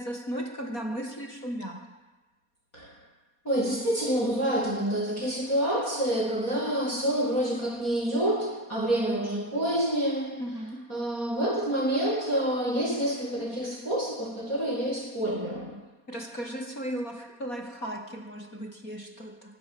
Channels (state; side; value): late; right; 4.2 ms